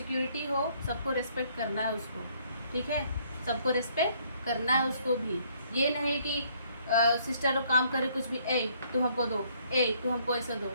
हो, सबको रिस्पेक्ट करना है उसको, ठीक है। सबको रिस्पेक्ट करना है उसको भी। ये नहीं कि सिस्टर लोग काम करे कुछ भी, ए तू हमको दो, ए तू हमको ऐसा दो,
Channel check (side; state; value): both; inverted; correlation -0.65